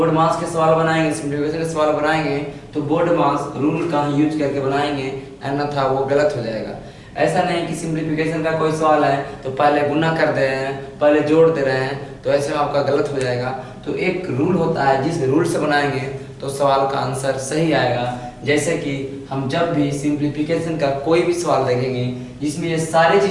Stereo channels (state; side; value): identical; both; correlation 1.00